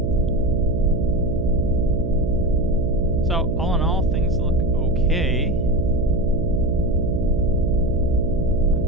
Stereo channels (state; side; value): noise; right; hum, 2 dB below the sound